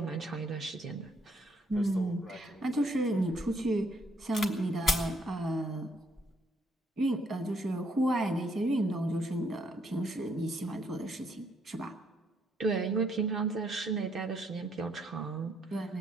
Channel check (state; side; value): normal; both; correlation 0.71